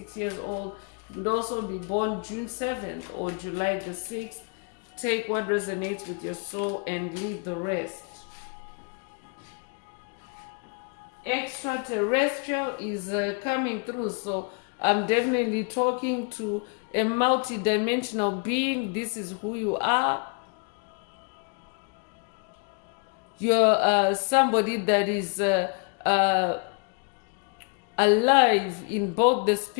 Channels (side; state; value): right; quieter; 35.1 dB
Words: years old. You could also be born June 7th or July the 6th. Take what resonates with your soul and leave the rest. Extraterrestrial is coming through. So I'm definitely talking to a multi-dimensional being. This is who you are. You're somebody that is alive in both the